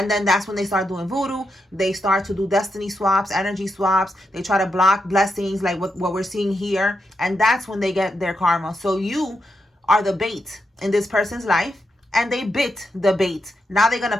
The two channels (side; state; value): both; normal; correlation 0.84